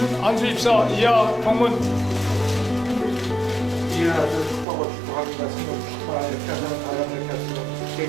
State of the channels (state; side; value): drops out; left; at 4.7 s